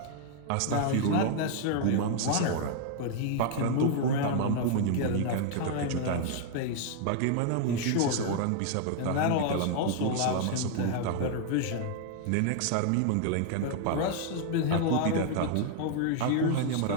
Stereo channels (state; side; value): different; both; correlation 0.00